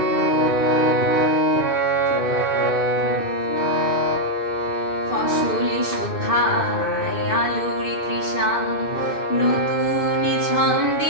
ফসল শোভায় আলোর তৃষা নতুন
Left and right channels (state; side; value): late; right; 2.6 ms